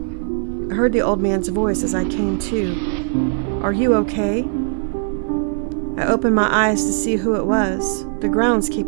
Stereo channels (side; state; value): left; silent; 56 dB below the other